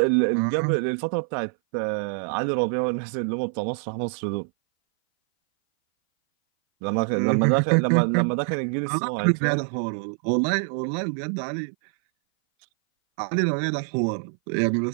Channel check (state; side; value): silent; left; 58 dB below the other